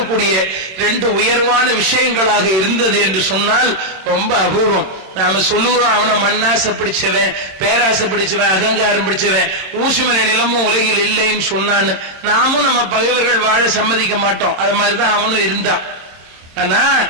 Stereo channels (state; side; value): late; left; 26 ms